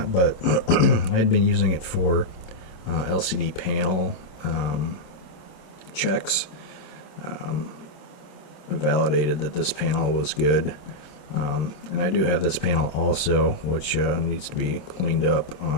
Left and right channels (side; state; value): right; late; 27 ms